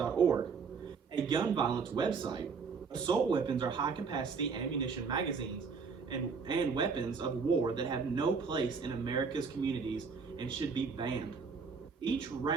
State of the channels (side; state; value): left; quieter; 5.3 dB